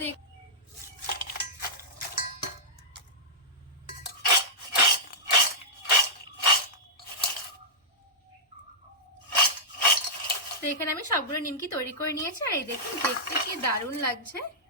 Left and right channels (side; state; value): both; normal; correlation -0.12